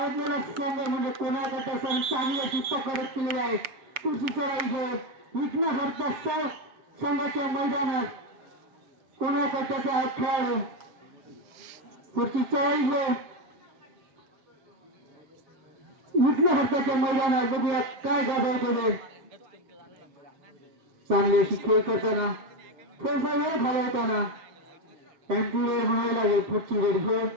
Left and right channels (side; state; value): left; late; 7.5 ms